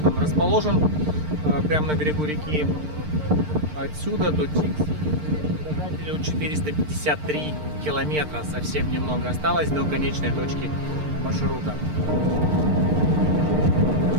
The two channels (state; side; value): late; left; 6.6 ms